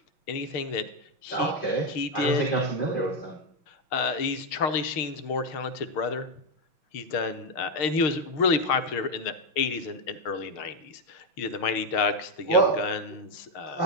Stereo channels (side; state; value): right; late; 6.5 ms